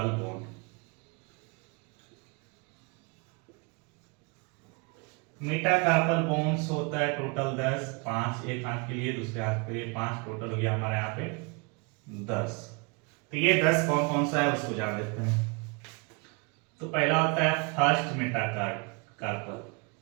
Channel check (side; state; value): left; quieter; 30.1 dB